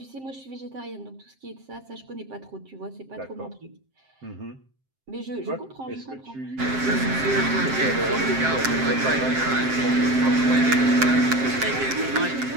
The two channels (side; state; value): left; late; 7.6 ms